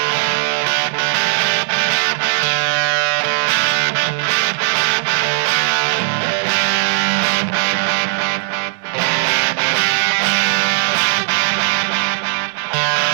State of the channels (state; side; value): silent; left; 68 dB below the other